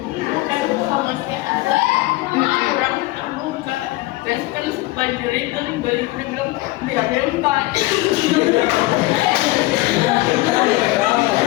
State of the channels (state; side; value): quieter; right; 19.4 dB